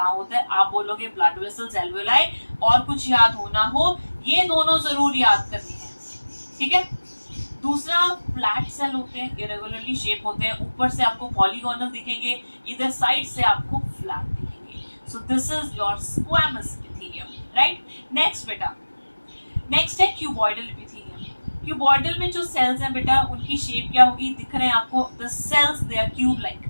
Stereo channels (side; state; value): both; inverted; correlation -1.00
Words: होता है, आप बोलोगे ब्लड वेसल्स, एल्वेओलाई, और कुछ याद होना हो ये दोनों जरूर याद करनी है, ठीक है. दूसरा फ्लैट सेल होते हैं, इरेगुलरली शेप होते हैं, ऊपर से आपको पॉलीगोनल दिखेंगे, इधर साइड से आपको फ्लैट दिखेंगे. So this is your squamous epithelium, right. Next बेटा, नेक्स्ट है क्यूबॉइडल एपिथेलियम. क्यूबॉइडल में जो सेल्स हैं बेटा उनकी शेप क्या होगी, दिख रहे हैं आपको, the cells they are cube like.